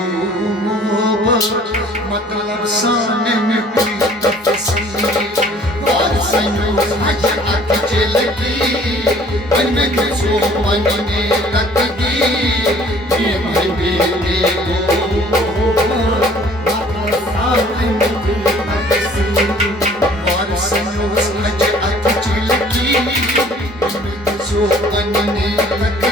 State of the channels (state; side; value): normal; both; correlation 0.54